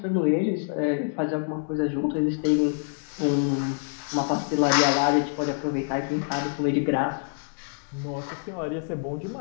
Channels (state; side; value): silent; right; digital silence